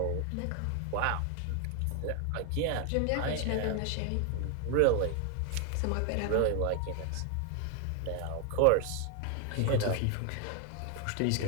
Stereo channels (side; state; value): both; different; correlation 0.01